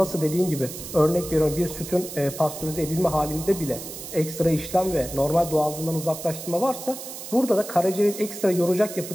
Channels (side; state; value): right; noise; hiss, 11 dB below the sound